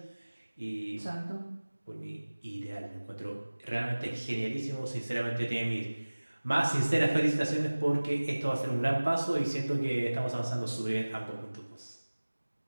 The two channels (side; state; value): both; inverted; correlation -1.00